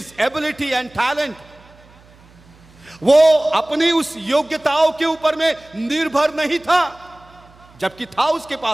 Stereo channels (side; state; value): right; noise; hum, 27 dB below the sound